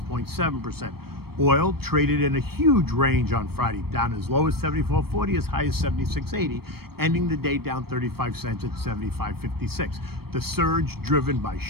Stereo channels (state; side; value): late; left; 0.95 ms